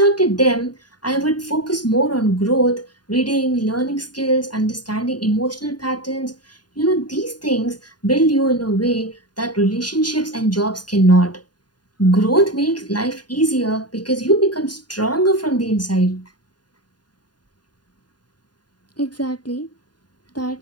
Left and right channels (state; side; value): late; right; 0.70 ms